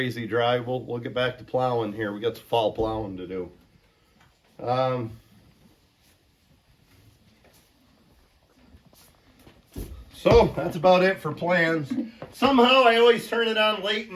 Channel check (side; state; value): both; identical; correlation 1.00